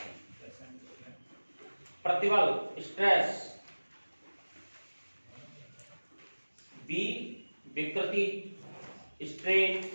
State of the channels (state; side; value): inverted; both; correlation -1.00